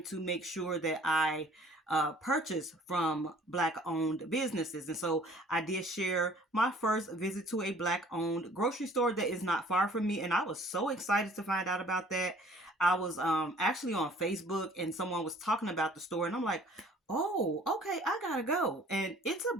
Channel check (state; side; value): normal; both; correlation 0.53